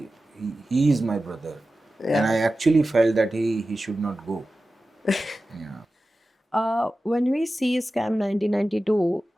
brother, and I actually felt that he should not go. Yeah. When we see Scam 1992,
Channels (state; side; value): normal; both; correlation 0.94